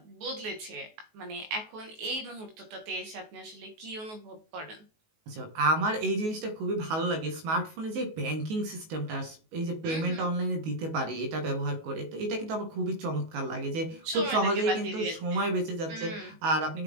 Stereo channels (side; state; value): left; late; 19 ms